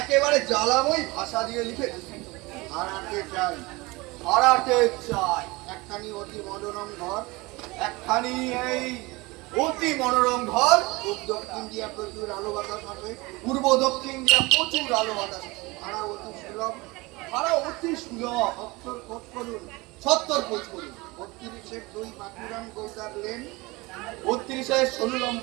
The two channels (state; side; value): quieter; left; 23.2 dB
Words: জ্বালাময়ী ভাষা দিয়ে লিখেছি। ভাড়াতে চাই, ভাড়াতে চাই একখানি অতি মনোরম ঘর, একখানি এই অতি মনোরম ঘর। পূর্ব দক্ষিণ দিয়া প্রচুর আলো বাতাস আছে, পূর্ব দক্ষিণ দিয়া প্রচুর আলো বাতাস। ভাড়া অতি সুলভ, ভাড়া অতি সুলভ। সত্তর খোঁজ করুন, 70 খোঁজ করুন। 32 2 বাঁকুড়ান গোলদার লেন, 32